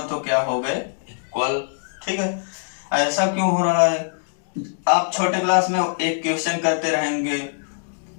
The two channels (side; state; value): right; silent; digital silence